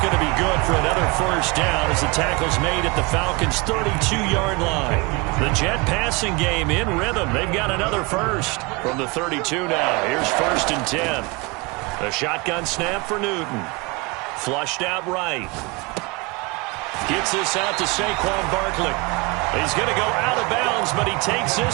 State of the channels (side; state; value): left; quieter; 26.8 dB